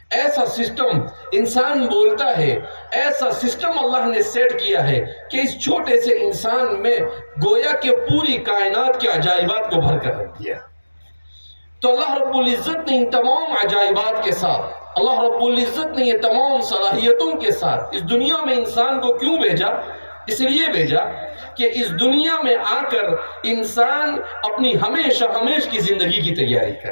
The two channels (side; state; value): both; inverted; correlation -1.00